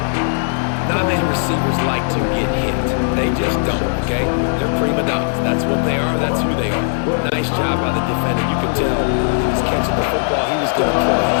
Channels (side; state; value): right; silent; digital silence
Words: Not many receivers like to get hit. They just don't, okay? They're prima donnas. That's what they are. That's who they are. Nice job by the defender. You could tell he was catching the football. He was going to put a